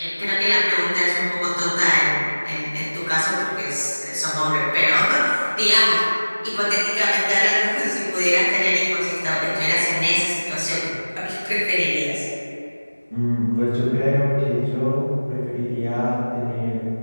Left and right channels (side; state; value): both; inverted; correlation -1.00